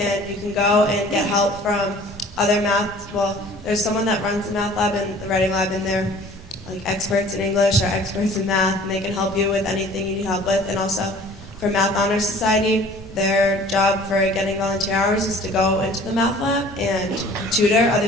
you can go and get help from other math. Well, there's someone that runs the math lab and the writing lab, and they're like experts in English or experts in math, and they can help you with anything you need help with. And also, for Math Honor Society, their job for getting volunteer hours is to go into the math lab and tutor other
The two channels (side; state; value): both; normal; correlation 0.49